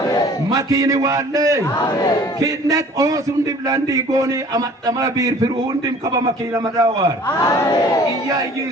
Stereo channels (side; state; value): both; normal; correlation 0.50